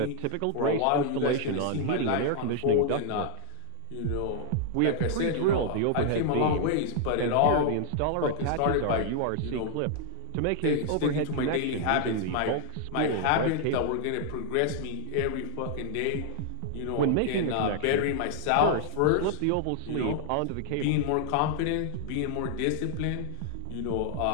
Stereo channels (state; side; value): different; both; correlation -0.01